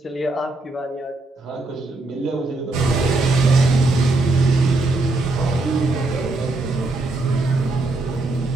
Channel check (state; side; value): quieter; left; 3.0 dB